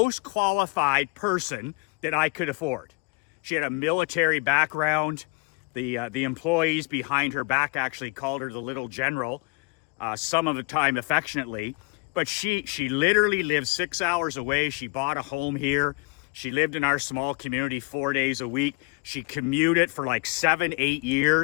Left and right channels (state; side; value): quieter; right; 28.5 dB